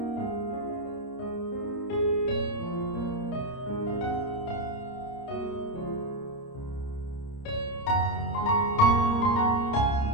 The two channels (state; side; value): late; right; 30 ms